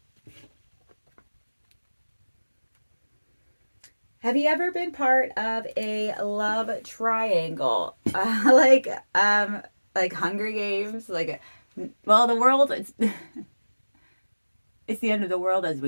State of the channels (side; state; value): both; inverted; correlation -1.00